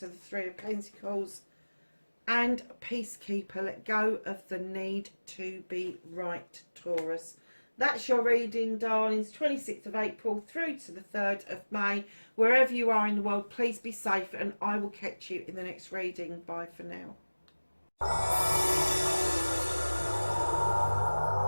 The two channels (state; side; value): inverted; both; correlation -1.00